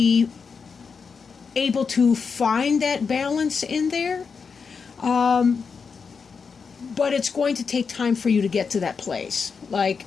able to find that balance in there. But it's going to take time for you to get to that place. Like,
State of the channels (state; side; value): quieter; right; 5.5 dB